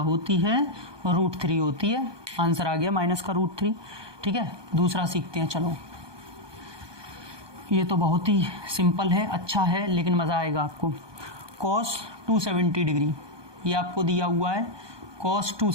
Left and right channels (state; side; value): late; left; 1.2 ms